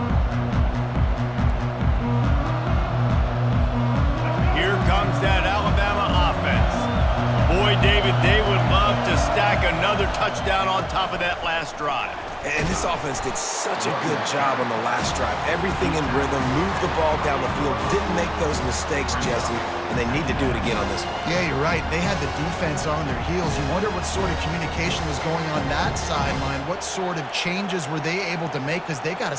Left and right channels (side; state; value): both; identical; correlation 1.00